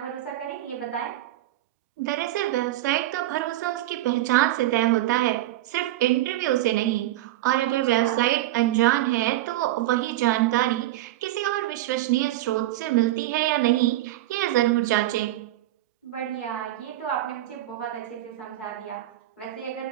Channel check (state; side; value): quieter; left; 15.5 dB